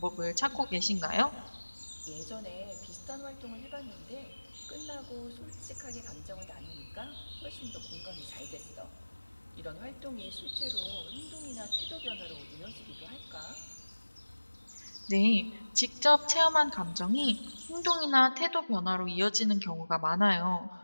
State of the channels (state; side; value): inverted; both; correlation -1.00